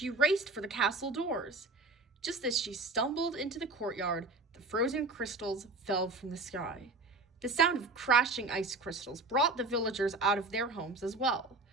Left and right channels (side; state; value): left; quieter; 3.4 dB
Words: raced for the castle doors. Just as she stumbled into the courtyard, the frozen crystals fell from the sky. The sound of crashing ice crystals brought the villagers out of their homes as well.